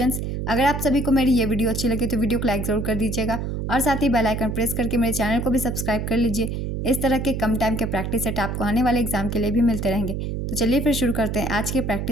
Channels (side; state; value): right; noise; hum, 3 dB below the sound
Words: अगर आप सभी को मेरी ये वीडियो अच्छी लगे तो वीडियो को लाइक ज़रूर कर दीजिएगा और साथ ही बेल आइकन प्रेस करके मेरे चैनल को भी सब्सक्राइब कर लीजिए। इस तरह के कम टाइम के प्रैक्टिस सेट आपको आने वाले एग्जाम के लिए भी मिलते रहेंगे। तो चलिए फिर शुरू करते हैं आज के